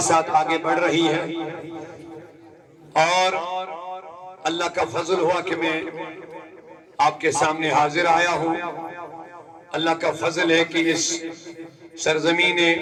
ساتھ آگے بڑھ رہی ہے، اور اللہ کا فضل ہوا کہ میں آپ کے سامنے حاضر آیا ہوں۔ اللہ کا فضل ہے کہ اس سرزمین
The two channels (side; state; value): both; identical; correlation 1.00